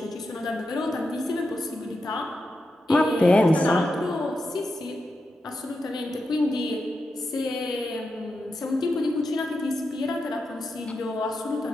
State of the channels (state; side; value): normal; both; correlation 0.88